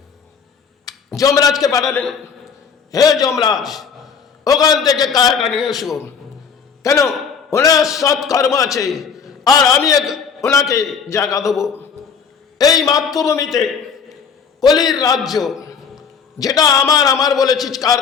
যমরাজকে পাঠালেন, হে যমরাজ, ওখান থেকে কায়াটা নিয়ে এসো। কেন? ওনার সৎ কর্ম আছে, আর আমি ওনাকে জায়গা দেবো। এই মাতৃভূমিতে কলির রাজ্য, যেটা আমার বলে চিৎকার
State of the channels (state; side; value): quieter; right; 6.2 dB